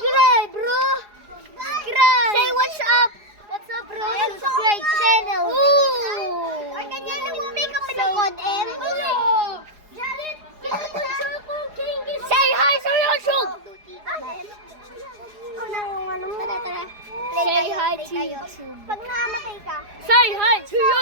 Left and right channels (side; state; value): left; late; 4.8 ms